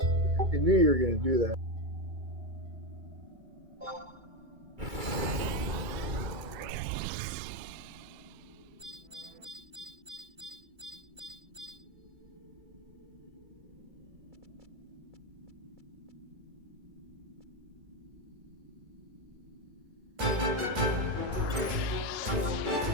I knew you were going to do that.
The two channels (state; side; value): late; left; 2.3 ms